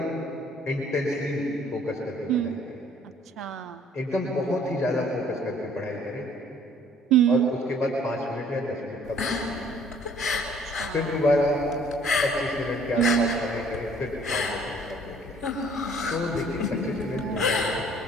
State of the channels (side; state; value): both; normal; correlation 0.58